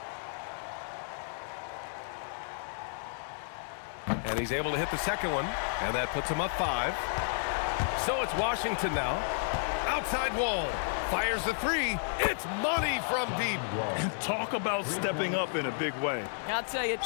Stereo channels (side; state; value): right; silent; 56 dB below the other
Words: And he's able to hit the second one, and that puts him up 5. So it's Washington now. Outside wall. Fires the three. It's money from deep. Talk about stepping up in a big way. I'll tell you, it